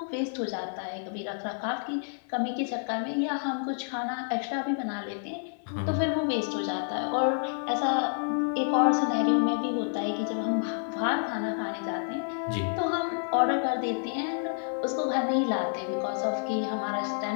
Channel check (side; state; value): right; silent; digital silence